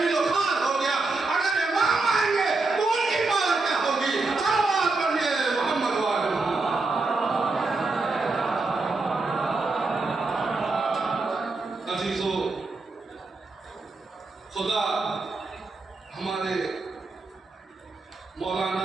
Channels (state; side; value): quieter; left; 3.6 dB